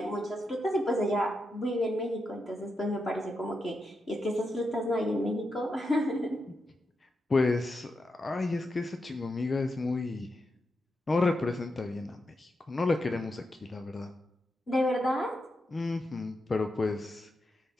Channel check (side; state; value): both; normal; correlation 0.86